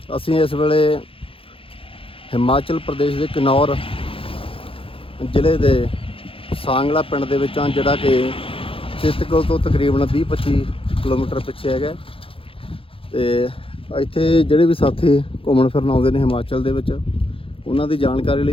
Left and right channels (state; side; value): late; right; 0.27 ms